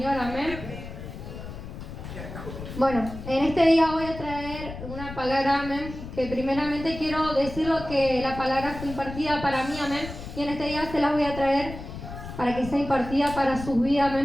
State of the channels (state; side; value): noise; left; rumble, 10 dB below the sound